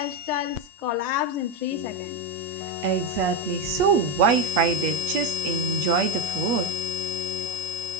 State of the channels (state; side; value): late; left; 8.4 ms